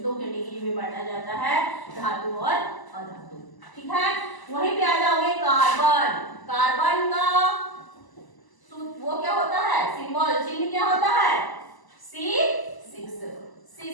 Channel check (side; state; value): right; late; 1.0 ms